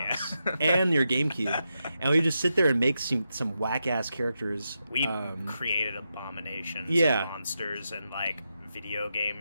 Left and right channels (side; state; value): both; inverted; correlation -0.86